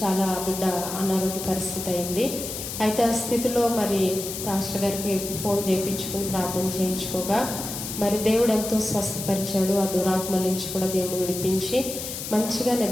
చాలా బిడ్డ అనారోగ్య పరిస్థితి అయింది. అయితే ఆ స్థితిలో మరి పాస్టర్ గారికి ఫోన్ చేయించుకుని ప్రార్థన చేయించుకోగా మరి దేవుడు ఎంతో స్వస్థపరిచాడు. ఆ దురాత్మల నుంచి కూడా దేవుడు విడిపించి మంచిగా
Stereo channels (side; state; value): left; noise; hiss, 7 dB below the sound